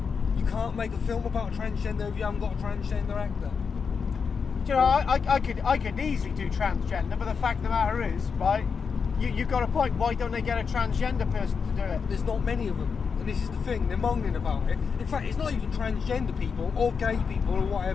You can't make a film about a transgender if you haven't got a transgender actor. Do you know, I could easily do transgender, but the fact of the matter is, right? You've got a point. Why don't they get a transgender person to do it? There's not many of them. And this is the thing, they're moaning about it. In fact, it's not even transgender people or gay people or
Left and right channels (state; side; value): quieter; right; 5.8 dB